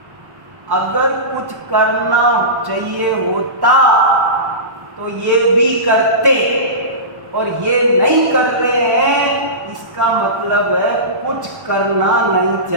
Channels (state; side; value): late; left; 1.1 ms